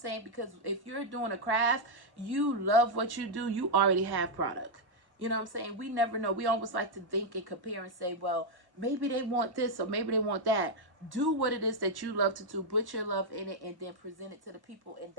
Because if you're doing a craft, you love what you do, you already have product. You know what I'm saying? We never know. We always like to think and compare and say, well, maybe they want this or maybe they want that. Do what it is that you love to do. Put your love in it and then present it to the people. And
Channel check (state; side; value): late; left; 1.1 ms